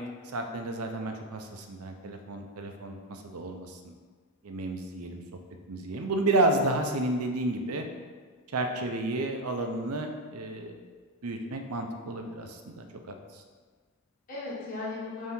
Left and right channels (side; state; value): both; normal; correlation 0.07